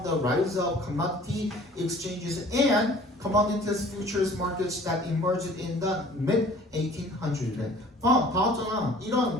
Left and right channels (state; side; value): normal; both; correlation 0.50